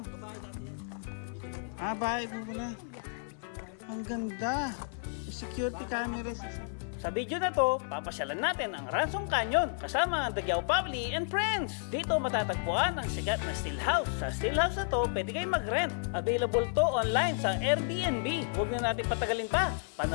Bahay po pala. Ang ganda. Security cameras. Sa video na to, papasyalan natin ang Ransom Canyon kasama ang Daguao Family and Friends. Dito matatagpuan ang sikat na still house. Sa still house na to, pwede kayong mag-rent. Available to online sa Airbnb. Huwag na natin patagalin pa.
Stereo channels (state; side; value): silent; right; 56 dB below the other